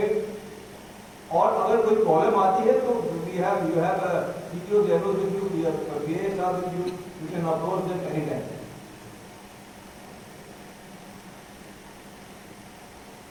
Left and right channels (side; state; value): both; identical; correlation 1.00